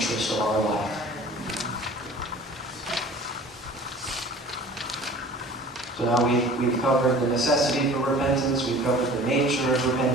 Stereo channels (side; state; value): both; normal; correlation 0.45